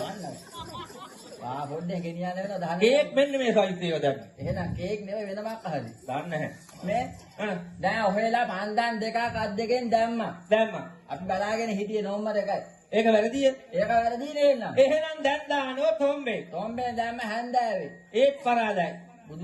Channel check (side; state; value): both; identical; correlation 1.00